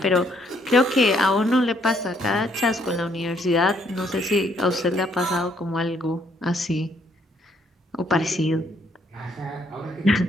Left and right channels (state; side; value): normal; both; correlation 0.69